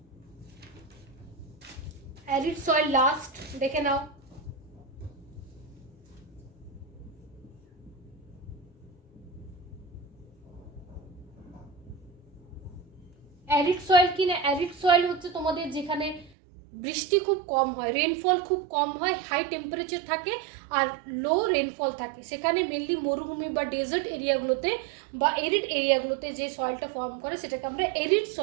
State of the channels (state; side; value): drops out; left; at 16.3 s